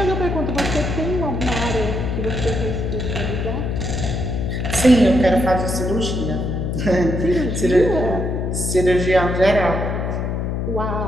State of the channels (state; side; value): noise; left; hum, 1 dB below the sound